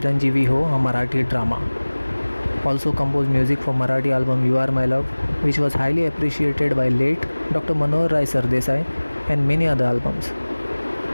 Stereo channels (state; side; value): inverted; both; correlation -1.00